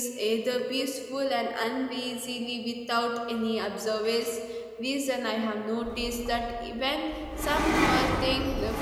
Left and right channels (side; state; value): both; identical; correlation 1.00